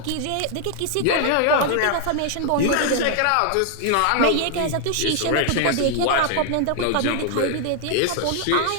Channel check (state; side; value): different; both; correlation 0.00